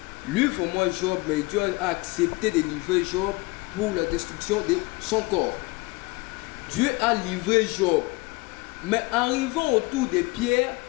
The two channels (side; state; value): right; quieter; 24.5 dB